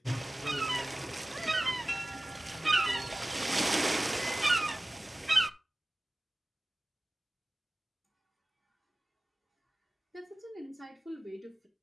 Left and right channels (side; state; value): both; normal; correlation 0.96